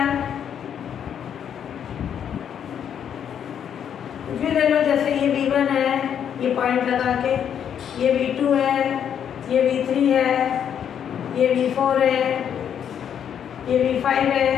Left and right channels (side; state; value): right; quieter; 8.7 dB